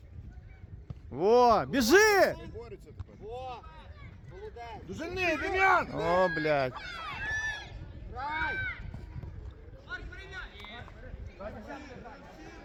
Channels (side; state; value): both; identical; correlation 1.00